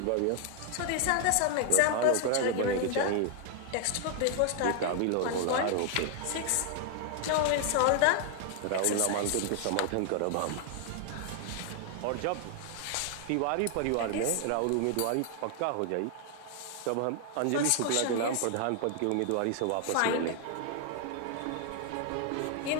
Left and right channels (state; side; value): different; both; correlation 0.00